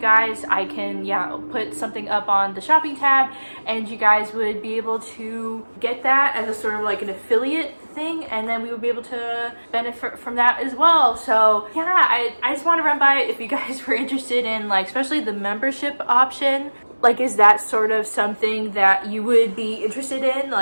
I can put something up on the shopping tab and you guys would be able to get that as a sort of like an affiliate thing, and then we would be able to benefit from that as well. So yeah, I just want to run by it if you guys were interested in, like, especially the membership option. Like, is that sort of something that you would be interested in?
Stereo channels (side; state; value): both; inverted; correlation -1.00